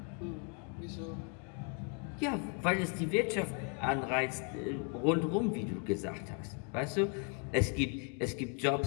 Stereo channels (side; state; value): right; quieter; 38.4 dB